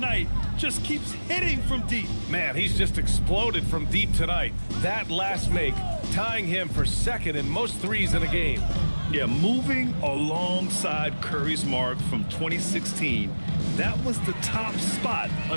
Just keeps hitting from deep. Man, he's just exploded from deep tonight. That last make, tying him for second in most threes in a game. Yeah, moving alongside Curry's mark from 2016. That was the top spot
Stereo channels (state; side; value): inverted; both; correlation -1.00